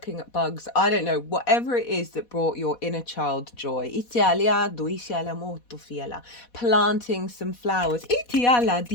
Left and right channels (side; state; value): right; late; 4.1 ms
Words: at bugs. I don't know, whatever it is that brought your inner child joy. Planting some flowers.